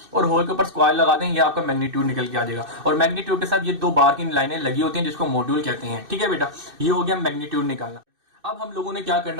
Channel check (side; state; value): left; late; 2.6 ms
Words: और होल के ऊपर स्क्वायर लगा दें, ये आपका मैग्नीट्यूड निकल के आ जाएगा। और मैग्नीट्यूड के साथ ये दो बार की लाइनें लगी होती हैं जिसको मॉड्यूल कहते हैं। ठीक है बेटा, ये हो गया मैग्नीट्यूड निकालना। अब हम लोगों ने क्या